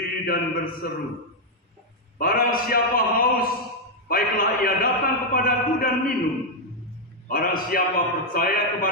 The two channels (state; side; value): normal; both; correlation -0.01